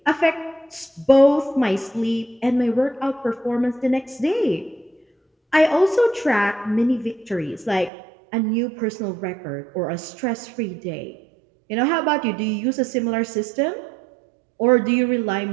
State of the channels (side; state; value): left; drops out; at 7.9 s